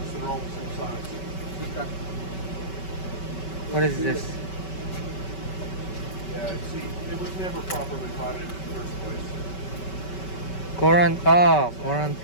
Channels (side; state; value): right; late; 5.2 ms